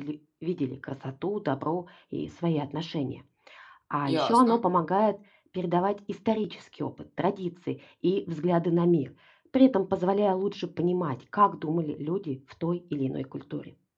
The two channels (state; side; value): identical; both; correlation 1.00